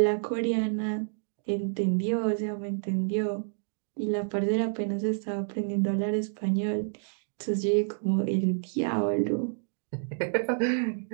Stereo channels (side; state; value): left; silent; digital silence